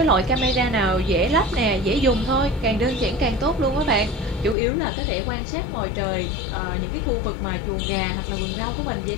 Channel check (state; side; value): drops out; right; at 4.5 s